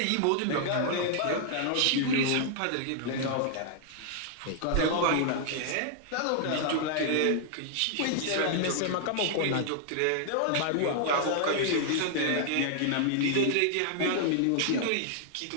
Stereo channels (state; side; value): different; both; correlation 0.00